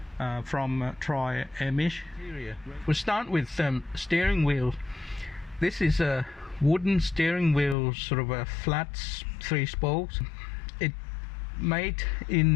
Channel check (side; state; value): right; drops out; at 7.8 s